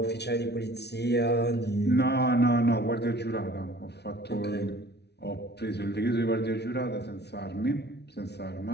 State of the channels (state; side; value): late; right; 0.49 ms